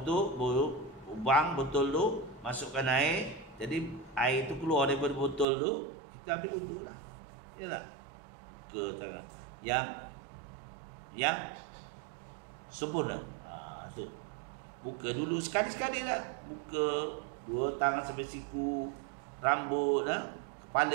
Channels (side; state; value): left; drops out; at 5.5 s